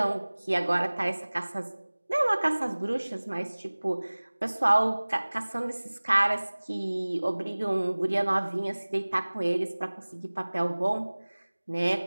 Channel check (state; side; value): inverted; both; correlation -1.00